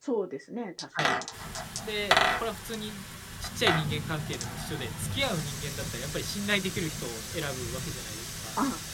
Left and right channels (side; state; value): both; identical; correlation 1.00